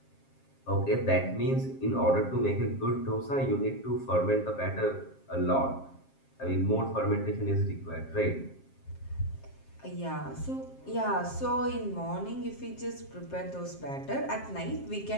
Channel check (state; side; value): late; right; 7.5 ms